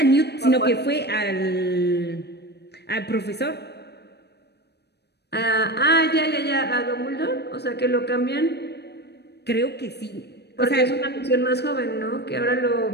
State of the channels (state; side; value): late; right; 0.48 ms